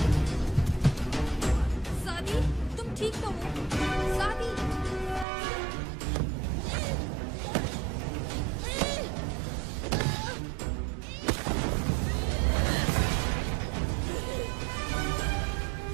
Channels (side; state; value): left; drops out; at 5.2 s